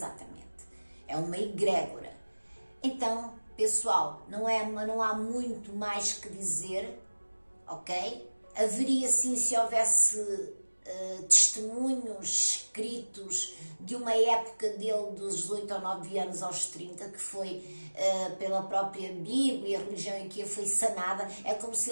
É uma egrégora. Então, pessoal, não há muito mais que dizer, ok? Haveria sim, se houvesse testemunhos escritos de uma época dele dos 18 ou 9 anos aos 30, que foi pela própria Bíblia, a religião em que ele foi sanada. É como se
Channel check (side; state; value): both; inverted; correlation -1.00